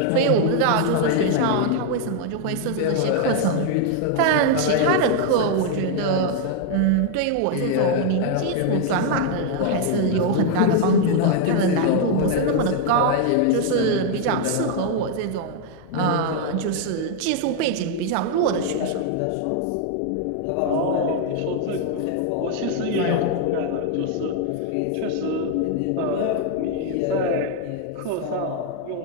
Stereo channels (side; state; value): both; different; correlation 0.00